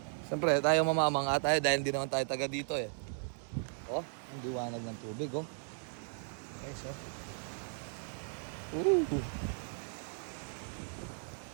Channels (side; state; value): left; silent; 54 dB below the other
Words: Siyempre, tayo mamamanga tayo dahil hindi naman tayo taga dito eh. Oh, ang liwanag ng tubig oh. Okay, so.